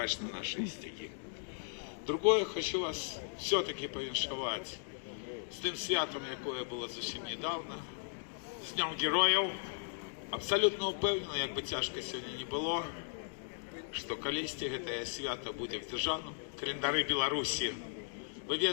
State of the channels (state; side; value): silent; right; digital silence